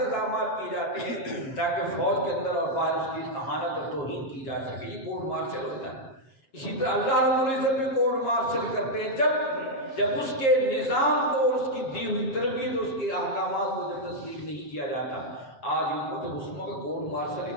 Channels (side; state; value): right; late; 7.5 ms